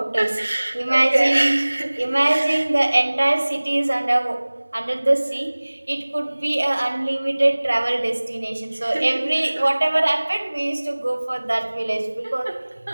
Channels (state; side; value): inverted; both; correlation -1.00